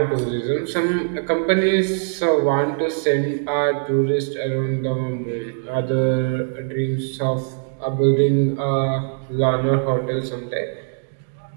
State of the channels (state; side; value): silent; left; digital silence